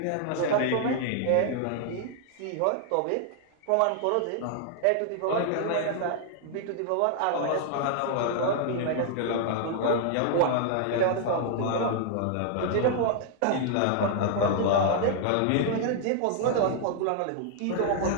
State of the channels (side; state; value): both; different; correlation 0.00